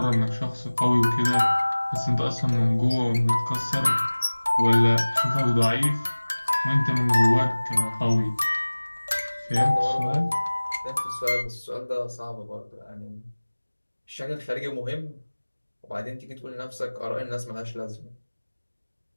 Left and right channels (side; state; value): both; inverted; correlation -1.00